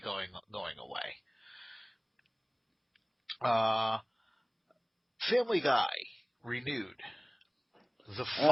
going away. Family Guy, renewed. The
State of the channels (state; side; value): identical; both; correlation 1.00